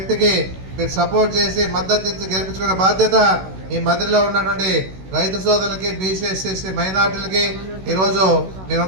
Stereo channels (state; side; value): late; left; 16 ms